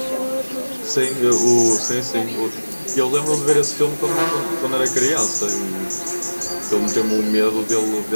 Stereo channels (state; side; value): inverted; both; correlation -1.00